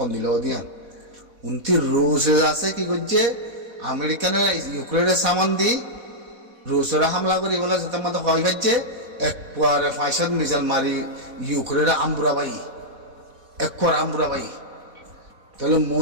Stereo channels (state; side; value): late; left; 4.1 ms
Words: দিলেও দিয়ান উনতি রুশ আছে কি করছে আমেরিকানের ইউক্রেনের সামান দি রুশরা হামলা করি বলে যাতে মতো হয় খাচ্ছে একবারে 500 মিসাইল মারি ইউক্রেনের আমবুরাবাই একবার আমবুরাবাই তাহলে